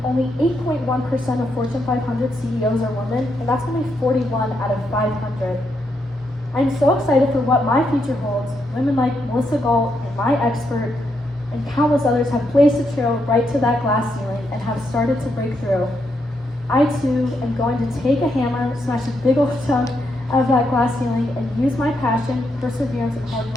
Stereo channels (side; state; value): both; normal; correlation 0.80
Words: only 8.1% of Fortune 500 CEOs are women, and that's only 41 out of 500. I'm so excited for what my future holds. Women like Melissa Galt and my expert and countless others have blazed a trail right to that glass ceiling and have started to break through. I too am going to take a hammer, smash a big old chunk out of that glass ceiling, and use my passion, perseverance, and hard